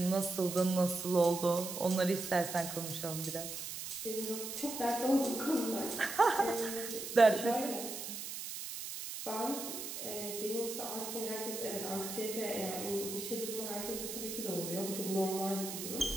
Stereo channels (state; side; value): noise; right; hiss, 7 dB below the sound